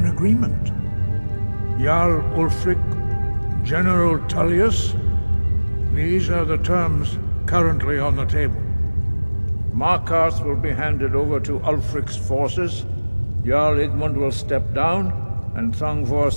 agreement. Jarl Ulfric, General Tullius, these are the terms currently on the table. Markarth will be handed over to Ulfric's forces, Jarl Igmund will step down, and Thongvor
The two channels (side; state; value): both; inverted; correlation -1.00